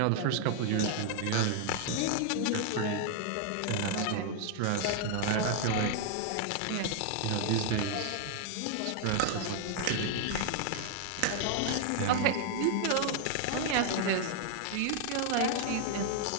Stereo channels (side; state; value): both; different; correlation 0.00